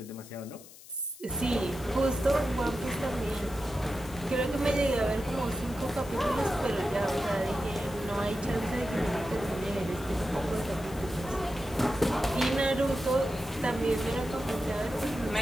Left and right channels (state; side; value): noise; left; hiss, 19 dB below the sound